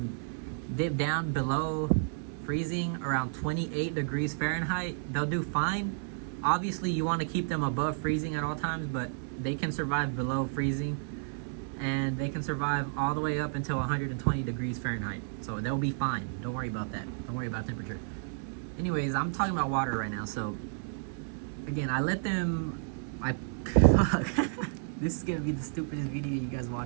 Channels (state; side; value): silent; left; 57 dB below the other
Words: dip down below freezing around 28 degrees Fahrenheit. They'll do fine. Obviously, you want to keep them above freezing at all times, but they can survive below freezing, and they can survive all the way up until 120 degrees Fahrenheit. So they'll be fine. Don't worry about that. Don't worry about temperature. Anyways, I'm talking about water right now. So again, I let them, fuck. This is gonna be the stupidest video you guys